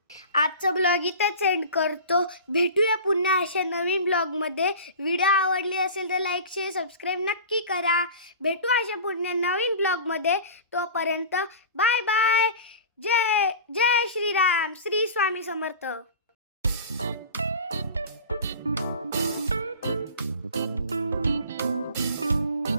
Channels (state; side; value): inverted; both; correlation -0.36